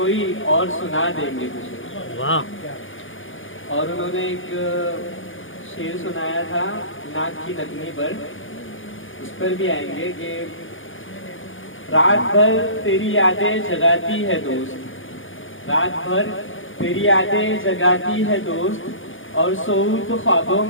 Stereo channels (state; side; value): late; right; 0.58 ms